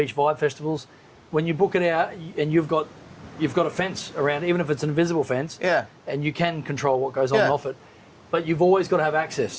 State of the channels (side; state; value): both; identical; correlation 1.00